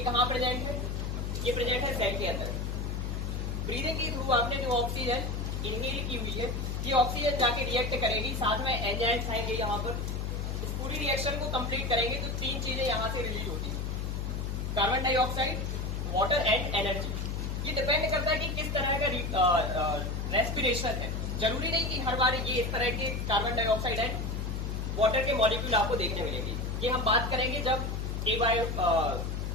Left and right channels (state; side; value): noise; left; hum, 2 dB below the sound